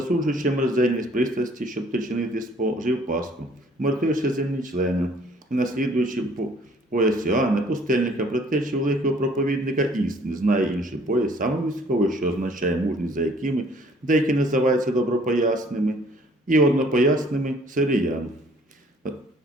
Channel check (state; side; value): normal; both; correlation 0.58